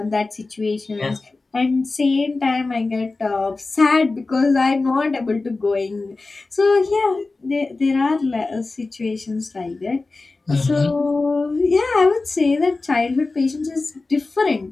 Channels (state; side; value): quieter; right; 3.5 dB